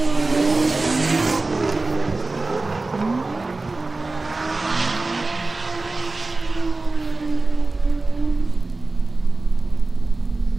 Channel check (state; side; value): quieter; left; 3.3 dB